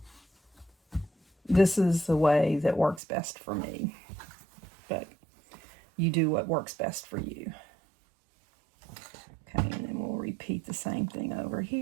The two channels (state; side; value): drops out; left; at 3.0 s